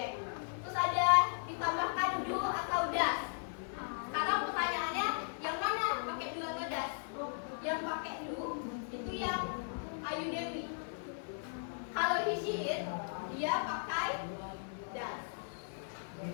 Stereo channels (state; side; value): silent; right; 53 dB below the other